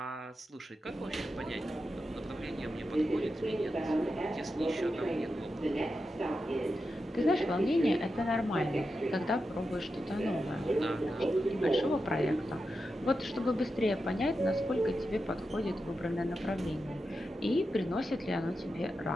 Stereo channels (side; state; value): both; normal; correlation 0.89